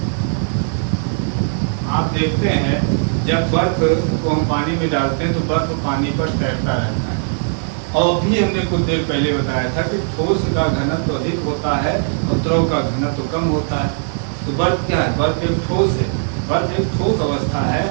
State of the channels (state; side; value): silent; left; digital silence